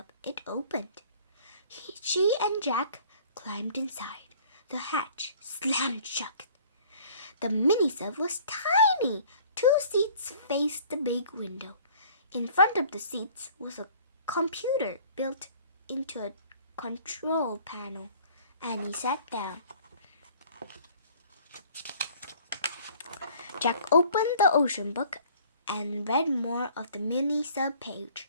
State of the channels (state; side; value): inverted; both; correlation -0.52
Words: It opened. She and Jack climbed inside. The hatch slammed shut. The mini-sub was tiny. 2 seats faced the big window. In front of the seats was a computer built into a control panel. Annie sat down. Jack opened the ocean book and read more of the mini-sub page.